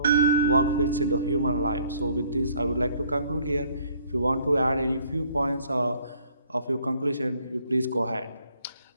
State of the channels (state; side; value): inverted; both; correlation -0.60